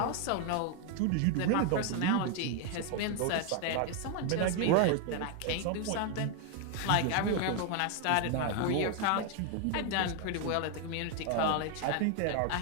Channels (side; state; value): both; different; correlation 0.00